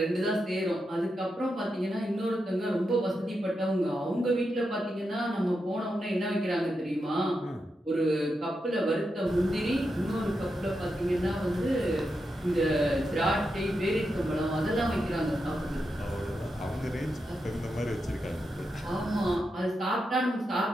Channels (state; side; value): normal; both; correlation 0.86